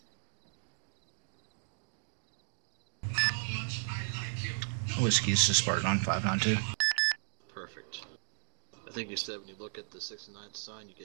Whiskey, this is Spartan on 592. Perfect. I think you said when you look at the 69 sign,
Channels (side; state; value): left; silent; digital silence